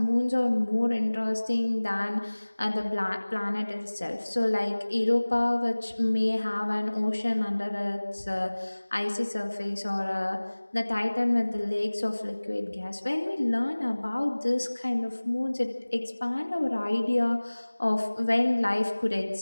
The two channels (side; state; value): both; inverted; correlation -1.00